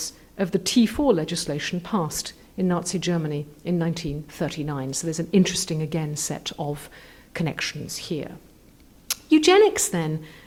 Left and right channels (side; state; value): both; identical; correlation 1.00